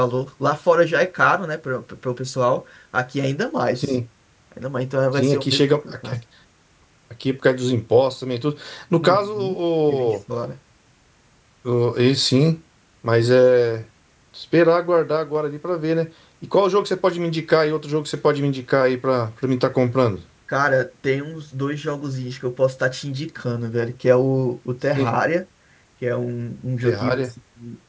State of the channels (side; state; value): both; identical; correlation 1.00